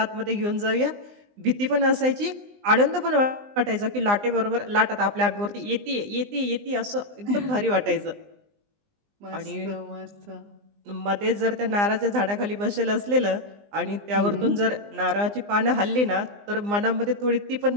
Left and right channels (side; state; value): left; late; 20 ms